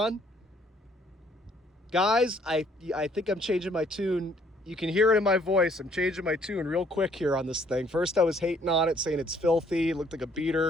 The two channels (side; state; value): both; normal; correlation 0.63